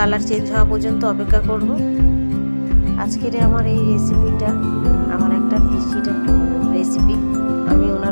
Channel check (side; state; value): both; inverted; correlation -1.00